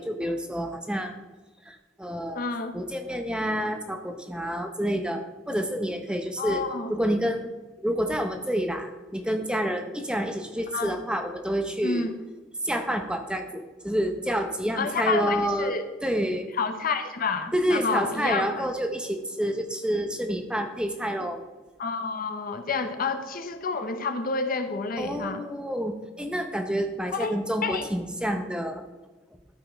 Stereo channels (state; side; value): normal; both; correlation 0.58